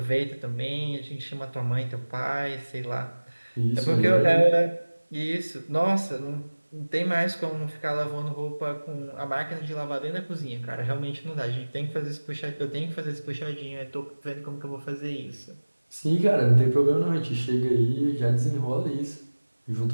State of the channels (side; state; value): both; inverted; correlation -1.00